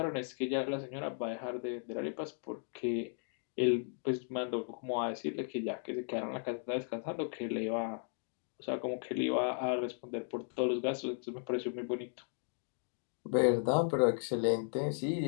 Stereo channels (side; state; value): right; silent; 54 dB below the other